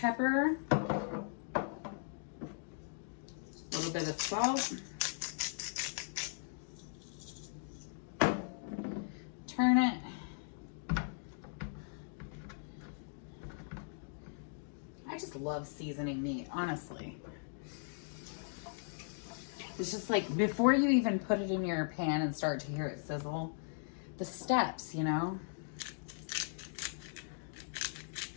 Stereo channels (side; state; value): right; silent; digital silence